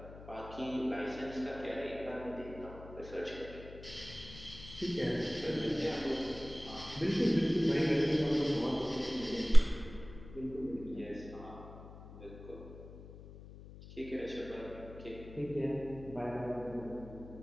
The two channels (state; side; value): noise; left; hum, 16 dB below the sound